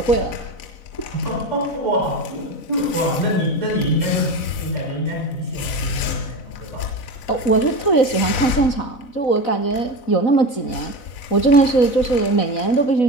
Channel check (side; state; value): right; late; 4.0 ms